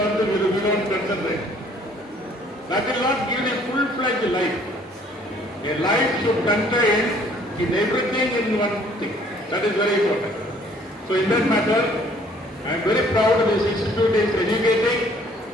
we don't concentrate. That will not give a full-fledged life. A life should contain in everything in one thing. That is very important. So in that matter, I am very proud this institute is educating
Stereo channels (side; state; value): both; normal; correlation 0.59